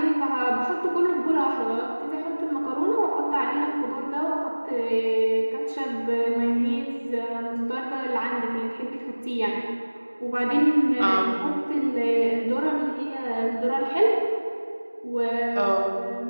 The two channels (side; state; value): both; inverted; correlation -1.00